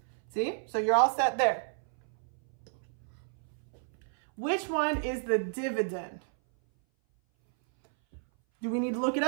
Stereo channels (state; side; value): silent; left; 57 dB below the other